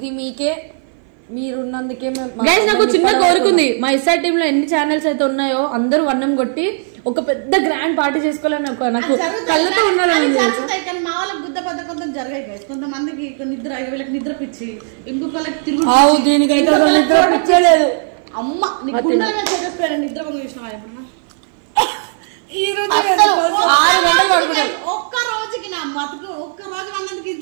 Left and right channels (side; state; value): left; silent; 58 dB below the other